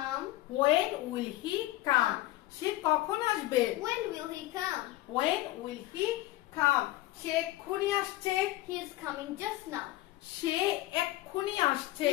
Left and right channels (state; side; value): quieter; right; 17.0 dB